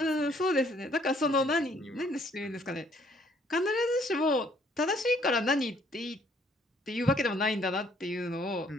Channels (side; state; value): both; normal; correlation 0.64